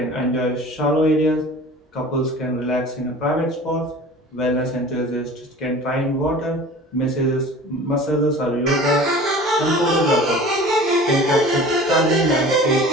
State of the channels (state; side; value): normal; both; correlation 0.42